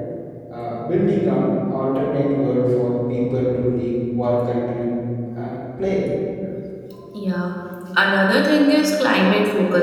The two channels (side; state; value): both; identical; correlation 1.00